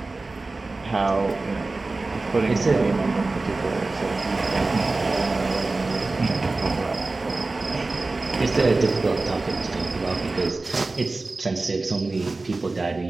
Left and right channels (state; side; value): quieter; left; 3.4 dB